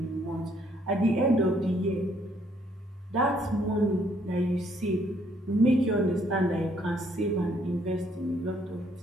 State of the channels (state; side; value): normal; both; correlation 0.67